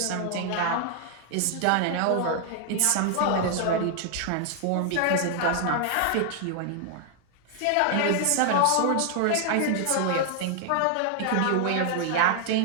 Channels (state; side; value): different; both; correlation 0.00